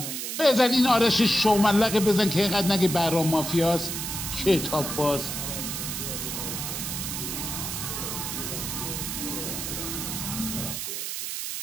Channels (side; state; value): right; noise; hiss, 4 dB below the sound